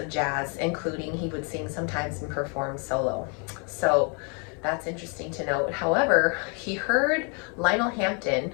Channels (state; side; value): quieter; right; 36.0 dB